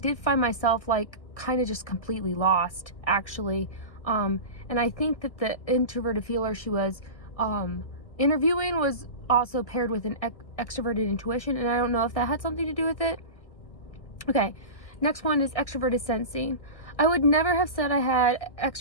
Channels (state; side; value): late; right; 1.6 ms